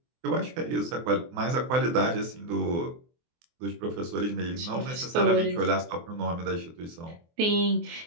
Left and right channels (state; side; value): late; left; 24 ms